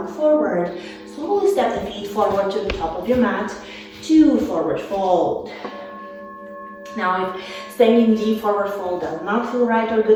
forward. Slowly step the feet forward to the top of your mat. 2 forward fold. Now, if staying in deep forward fold does not feel right or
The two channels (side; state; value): both; identical; correlation 1.00